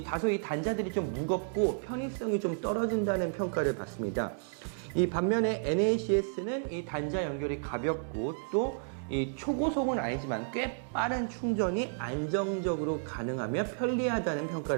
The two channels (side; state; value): left; silent; digital silence